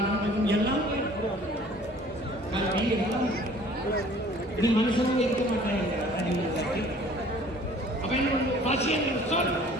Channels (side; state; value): both; normal; correlation 0.52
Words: எல்லாம் கல்வி எல்லாம் இது மனுஷனும் இருக்க மாட்டாங்க. அப்ப என்ன பசி என்ற சொல்